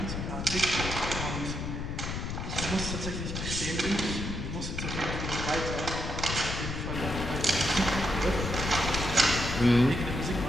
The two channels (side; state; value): left; noise; rumble, 4 dB below the sound